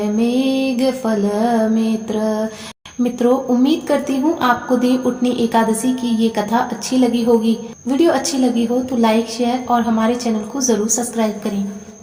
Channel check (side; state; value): both; identical; correlation 1.00